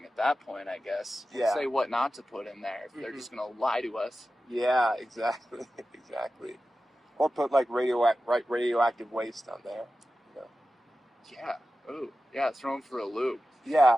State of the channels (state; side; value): normal; both; correlation 0.94